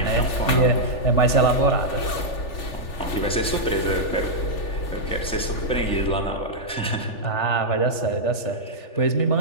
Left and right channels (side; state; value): right; late; 3.4 ms